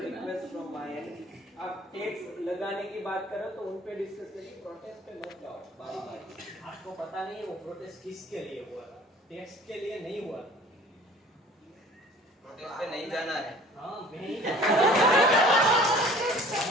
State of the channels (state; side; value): normal; both; correlation 0.49